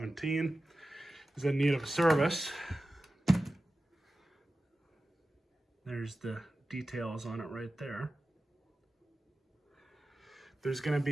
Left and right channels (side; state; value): both; normal; correlation 0.94